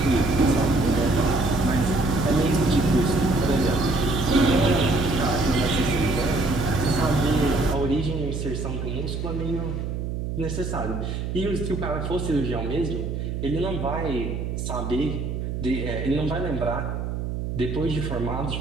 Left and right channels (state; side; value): noise; right; hum, 4 dB below the sound